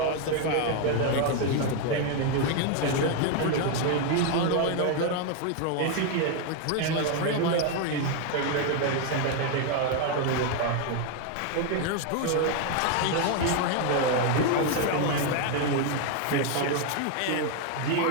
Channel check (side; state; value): both; different; correlation 0.01